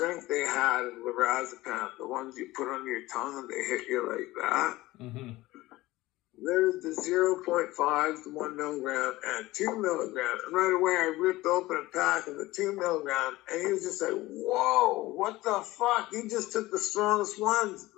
they had of lorazepam, the ones you put under your tongue and they hit you like that. Mm-hmm. There's the 0.5, the 1 milligram, and 2 milligram. And right away, I ripped open a pack of the 2 milligram, and he was just like, whoa, what the fuck? You just took the strongest ones,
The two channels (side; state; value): right; quieter; 18.5 dB